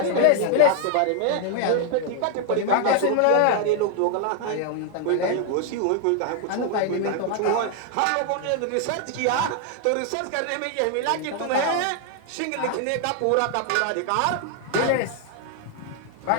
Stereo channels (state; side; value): different; both; correlation 0.00